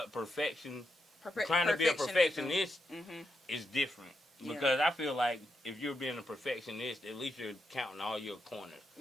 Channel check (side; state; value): both; normal; correlation 0.83